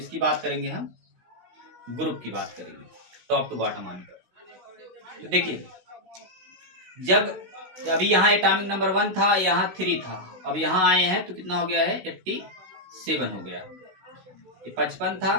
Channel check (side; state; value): left; late; 16 ms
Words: बात करेंगे, हम ग्रुप की बात करेंगे टॉप टू बॉटम आने पर। तो देखिए जब अभी यहाँ एटॉमिक नंबर 1 था, यहाँ 3 था, अब यहाँ आए हैं तो कितना हो गया है, 87 हो गया। ये 55 था,